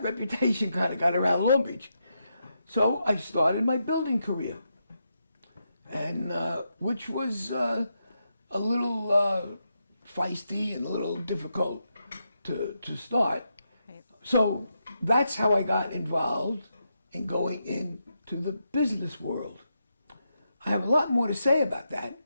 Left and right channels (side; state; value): both; inverted; correlation -0.84